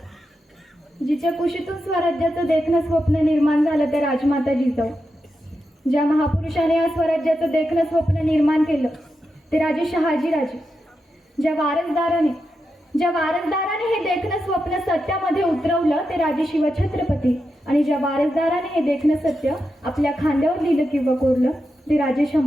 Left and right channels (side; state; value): both; normal; correlation 0.88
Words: जिच्या कुशीतून स्वराज्याचं देखणं स्वप्न निर्माण झालं ते राजमाता जिजाऊ. ज्या महापुरुषाने या स्वराज्याचं देखणं स्वप्न निर्माण केलं ते राजे शहाजीराजे. ज्या वारसदाराने हे देखणं स्वप्न सत्यामध्ये उतरवलं ते राजे शिवछत्रपती. आणि ज्या वारसदाराने हे देखणं सत्य आपल्या खांद्यावर लिहिलं किंवा कोरलं ते राजे